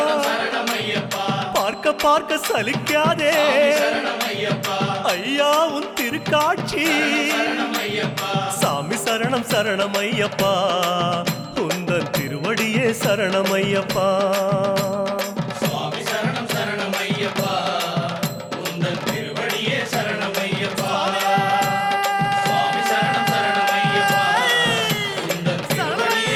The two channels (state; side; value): identical; both; correlation 1.00